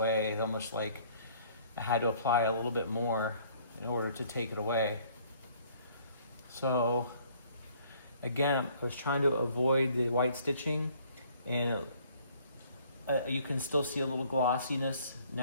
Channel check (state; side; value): inverted; both; correlation -0.59